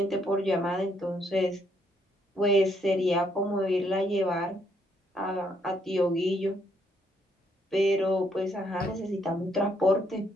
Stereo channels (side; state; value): both; normal; correlation 0.72